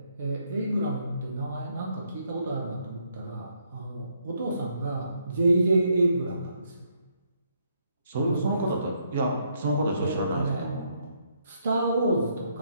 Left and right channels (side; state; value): both; inverted; correlation -0.74